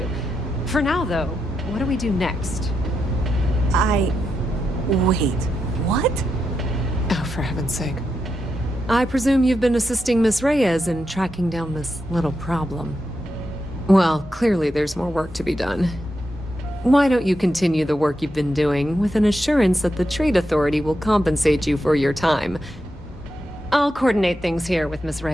For now, though, what do we do next? Wait, what? Oh, for heaven's sake. I presume you've been assisting Miss Reyes in tracking down this little problem. Well, clearly there's more work to be done. Why don't you continue the work you've been doing with an assurance that the Trade Authority will compensate you for your time? I'll coordinate things here with Miss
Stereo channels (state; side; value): normal; both; correlation 0.85